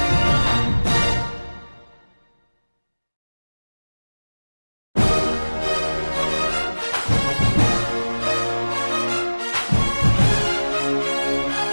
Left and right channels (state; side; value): inverted; both; correlation -1.00